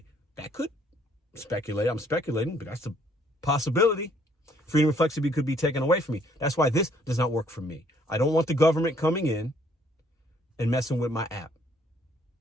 That could speculate. I'm speculating, but that's a possibility. Freedom and flexibility could be taken away from me. That's why this does not work for me. I don't want the government coming in and messing with my app.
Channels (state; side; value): normal; both; correlation 0.64